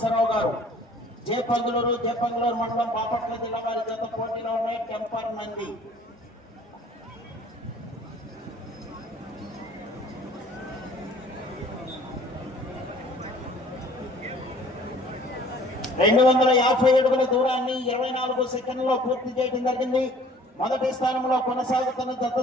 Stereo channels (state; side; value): normal; both; correlation 0.52